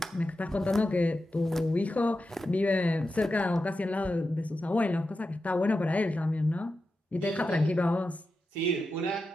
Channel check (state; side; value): normal; both; correlation 0.90